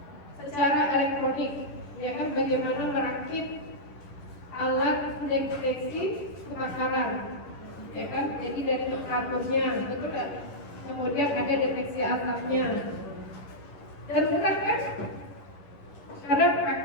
secara elektronik, ya kan, bagaimana merakit alat deteksi kebakaran, ya kan, jadi dari temperaturnya, betul kan? Kemudian ada deteksi asapnya, dan mudah kan? Karena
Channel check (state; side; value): late; right; 10 ms